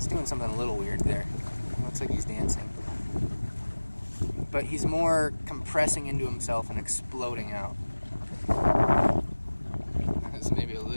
doing something a little weird there. It looks like he's dancing. But he's more compressing into himself and exploding out. That's maybe a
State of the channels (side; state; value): both; inverted; correlation -1.00